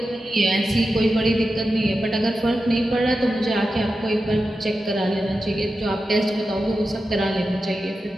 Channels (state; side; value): normal; both; correlation 0.91